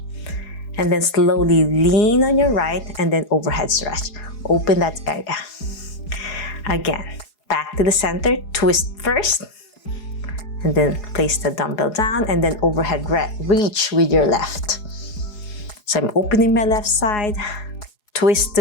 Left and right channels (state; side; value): late; right; 4.8 ms